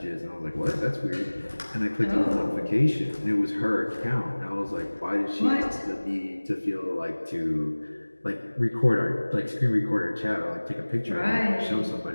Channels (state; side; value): inverted; both; correlation -1.00